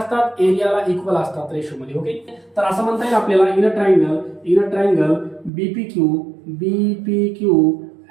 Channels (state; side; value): drops out; left; at 5.5 s